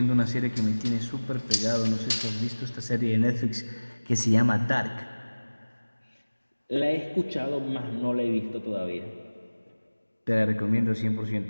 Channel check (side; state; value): both; inverted; correlation -1.00